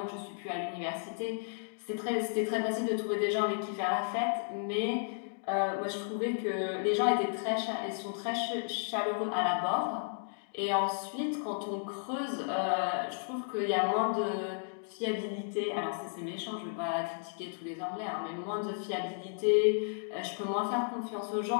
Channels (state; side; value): silent; right; digital silence